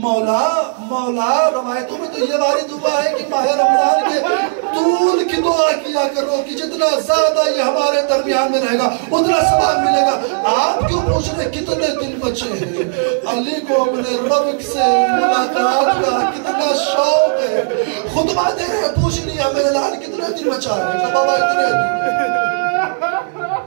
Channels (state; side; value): silent; left; digital silence